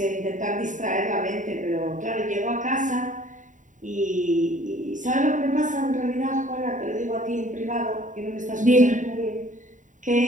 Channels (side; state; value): left; late; 0.37 ms